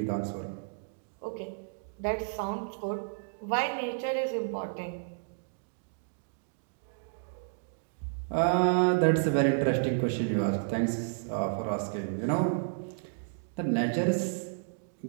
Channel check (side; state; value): left; silent; digital silence